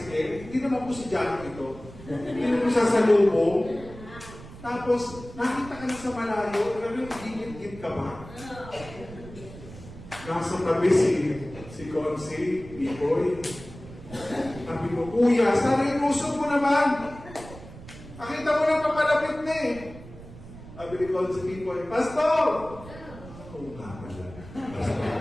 Hindi naman po si John ito. Hindi naman siya sa lubong. Tapos, nakita ka na sa malayo, talagang gigit-git ka ba? Nasa tabi si Consi, Pipoy. Sabi ko, Kuya, sana inusog mo naman. Nakita mo lang papalapit na eh. Sabi ni Consi, Pipoy, Pastor! Oo nga pala. Pastor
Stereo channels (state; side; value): noise; right; rumble, 16 dB below the sound